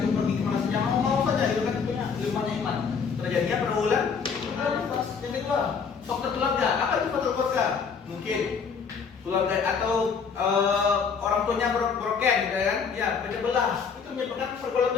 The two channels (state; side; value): quieter; right; 5.9 dB